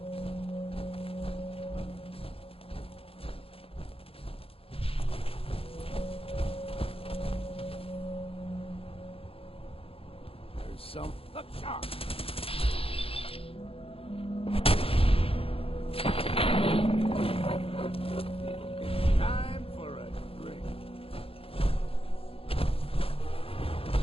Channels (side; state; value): right; late; 0.27 ms